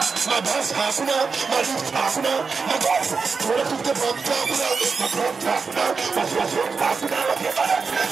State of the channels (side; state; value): left; quieter; 5.0 dB